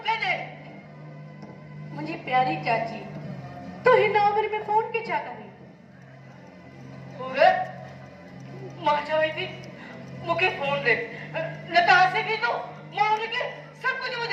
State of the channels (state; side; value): identical; both; correlation 1.00